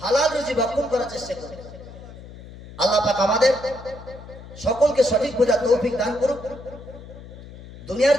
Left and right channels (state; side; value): noise; left; hum, 16 dB below the sound